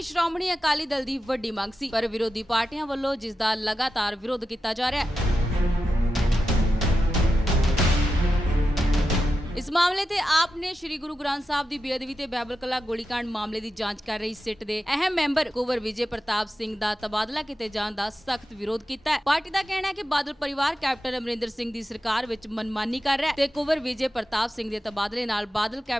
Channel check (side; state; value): both; normal; correlation 0.90